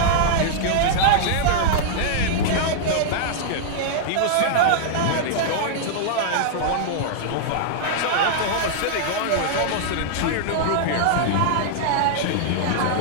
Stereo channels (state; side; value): different; both; correlation -0.01